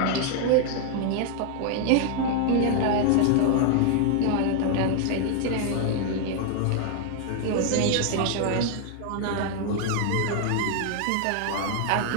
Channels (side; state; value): both; different; correlation 0.00